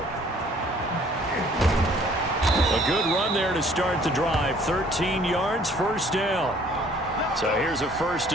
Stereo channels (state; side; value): normal; both; correlation 0.57